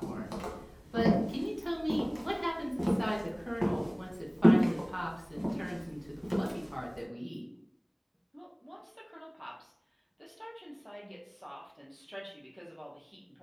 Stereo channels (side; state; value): both; identical; correlation 1.00